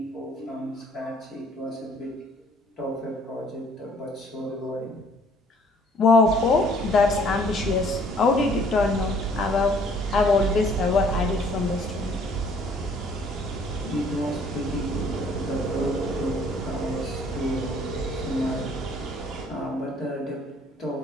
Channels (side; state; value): both; normal; correlation 0.59